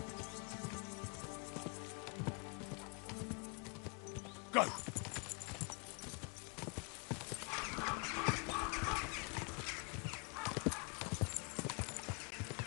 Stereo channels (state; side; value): quieter; right; 33.9 dB